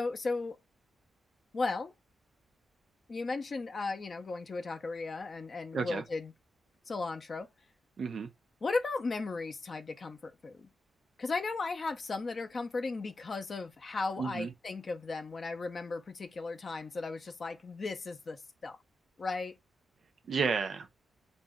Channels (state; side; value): normal; both; correlation 0.89